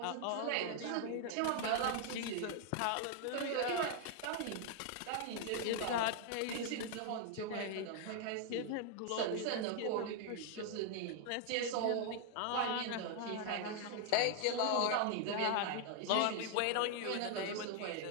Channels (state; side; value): different; both; correlation 0.00